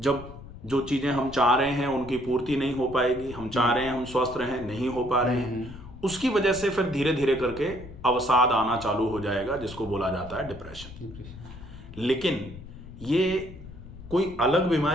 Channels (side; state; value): left; noise; rumble, 15 dB below the sound